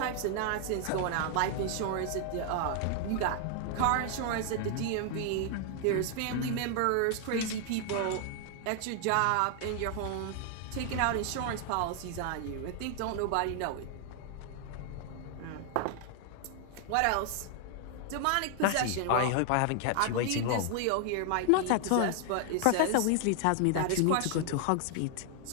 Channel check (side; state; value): both; different; correlation 0.00